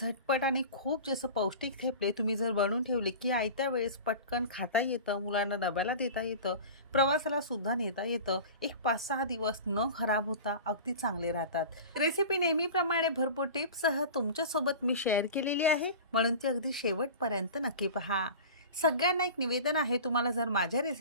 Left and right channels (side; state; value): both; inverted; correlation -0.35